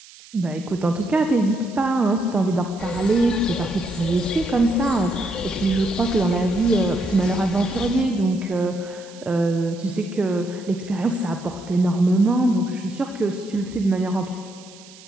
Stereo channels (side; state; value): right; noise; hiss, 21 dB below the sound